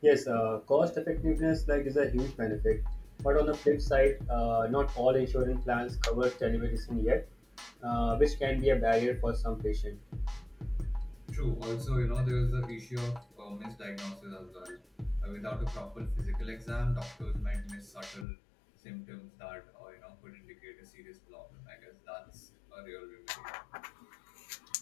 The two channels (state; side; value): drops out; right; at 18.2 s